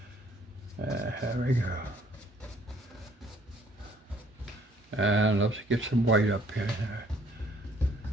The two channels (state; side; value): normal; both; correlation 0.61